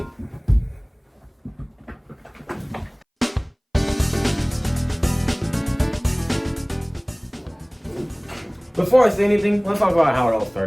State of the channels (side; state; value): both; identical; correlation 1.00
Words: Before I say anything, let's talk about how it all